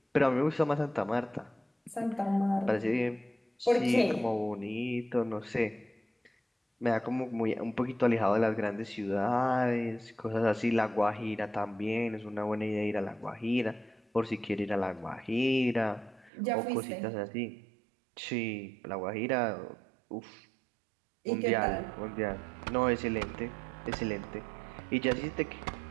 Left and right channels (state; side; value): drops out; left; at 16.3 s